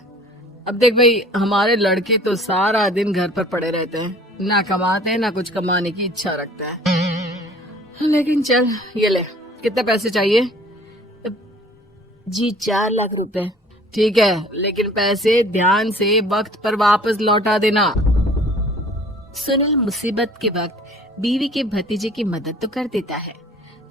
अब देख भाई, हमारे लड़के तो सारा दिन घर पर पड़े रहते हैं, ना कमाते हैं ना कुछ कमाने की इच्छा रखता है। लेकिन चल, ये ले, कितने पैसे चाहिए? जी 4 लाख रुपए। ठीक है, लेकिन पैसे ध्यान से वक्त पर वापस लौटा देना। सुनील मुसीबत के वक्त बीवी के भतीजे की मदद तो कर देता है,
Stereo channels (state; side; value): normal; both; correlation 0.51